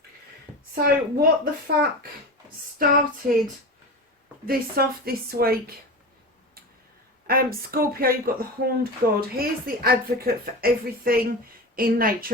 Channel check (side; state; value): both; normal; correlation 0.27